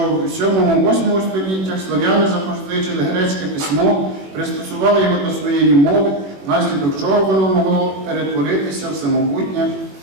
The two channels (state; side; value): late; left; 21 ms